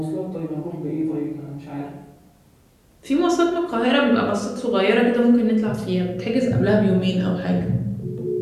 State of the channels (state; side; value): identical; both; correlation 1.00